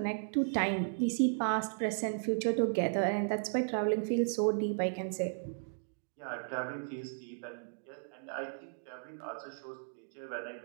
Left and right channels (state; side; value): silent; left; digital silence